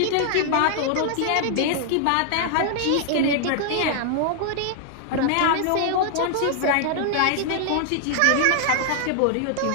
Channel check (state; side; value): different; both; correlation 0.00